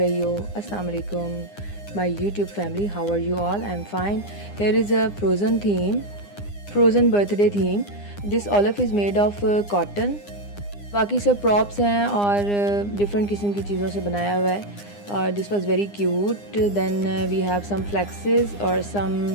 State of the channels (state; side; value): late; right; 9.8 ms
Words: हो? अस्सलाम वालेकुम my YouTube family, how are you all? I am fine. Here is a Frozen theme, Frozen birthday theme. This Olaf is made of cotton. बाकी सब प्रॉप्स हैं और डिफरेंट किस्म की चीज़ों से बनाया हुआ है और this was very cute. Then we have some flexes और सम